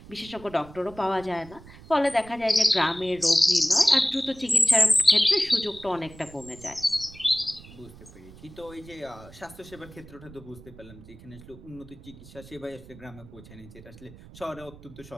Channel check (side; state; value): right; noise; rumble, 19 dB below the sound